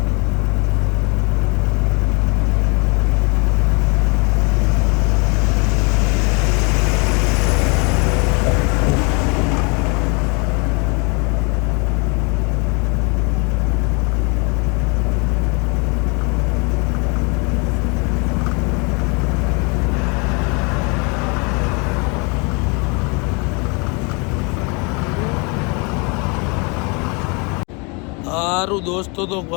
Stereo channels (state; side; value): quieter; right; 31.3 dB